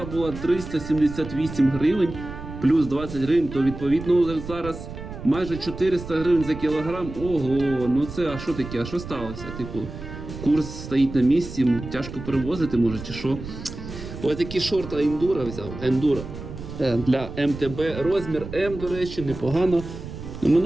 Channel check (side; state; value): right; noise; rumble, 11 dB below the sound